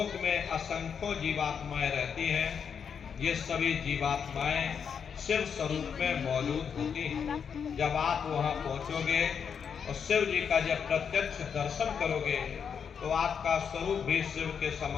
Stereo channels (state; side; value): quieter; right; 7.0 dB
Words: में असंख्यों जीवात्माएं रहती हैं। ये सभी जीवात्माएं शिव स्वरूप में मौजूद होती हैं। जब आप वहां पहुंचोगे और शिव जी का जब प्रत्यक्ष दर्शन करोगे तो आपका स्वरूप भी शिव के